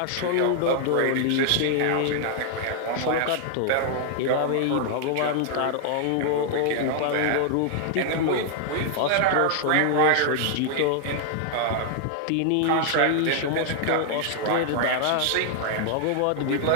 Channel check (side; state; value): both; different; correlation 0.00